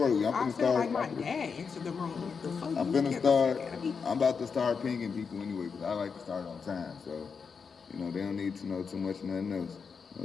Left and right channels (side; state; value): right; quieter; 5.7 dB